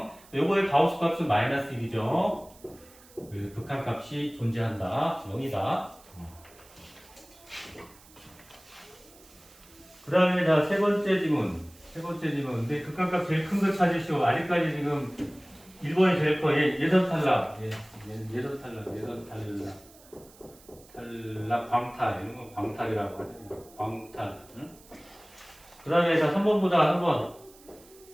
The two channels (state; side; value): noise; right; hiss, 24 dB below the sound